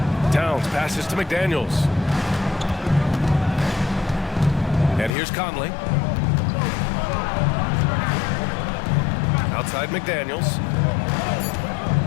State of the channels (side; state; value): right; drops out; at 5.1 s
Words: Towns passes to McDaniels. And here's Conley. Outside McDaniels.